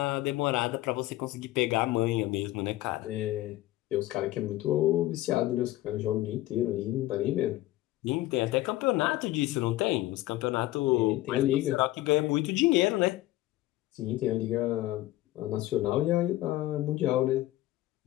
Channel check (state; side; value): quieter; right; 16.7 dB